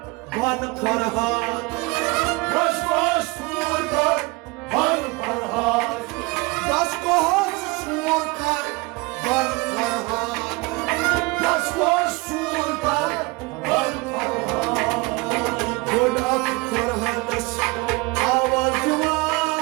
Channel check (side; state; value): left; quieter; 25.1 dB